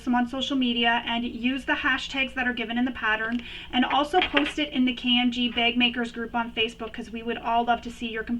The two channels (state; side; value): identical; both; correlation 1.00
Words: them on social media and use the hashtags that are given in the pattern, and also post it in the KMG Bag Makers group on Facebook, because we would all love to see your